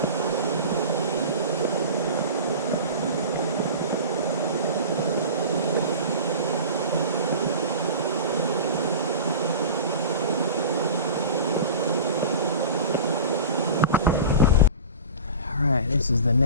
This is the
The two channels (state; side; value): inverted; both; correlation -0.35